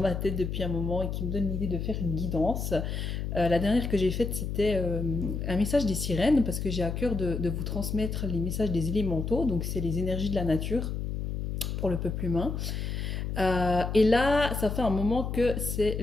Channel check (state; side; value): noise; left; hum, 3 dB below the sound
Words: tête depuis un moment et qui me donne l'idée de faire une guidance. La dernière que j'ai faite, c'était un message des sirènes, parce que j'ai à cœur de vous transmettre les messages des élémentaux, donc c'est les énergies de la nature pour le peuple humain. Et là, ça fait un moment que c'est